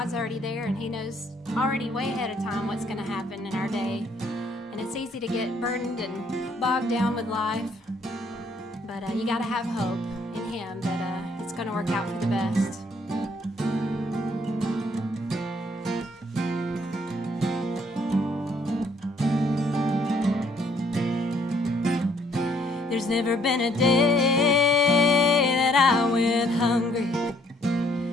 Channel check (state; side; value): normal; both; correlation 0.65